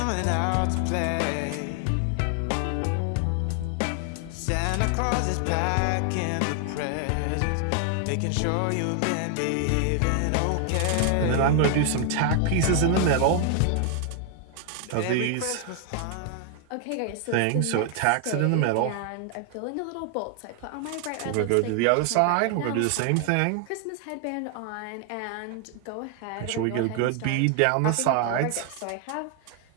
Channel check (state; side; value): different; both; correlation 0.00